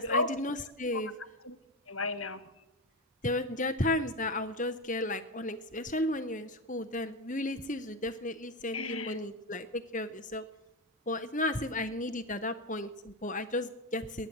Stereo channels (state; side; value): normal; both; correlation 0.14